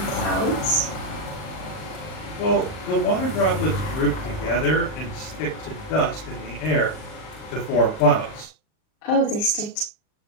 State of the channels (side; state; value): right; late; 39 ms